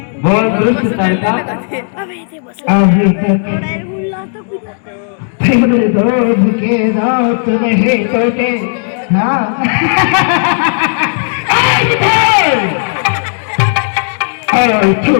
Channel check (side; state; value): right; silent; digital silence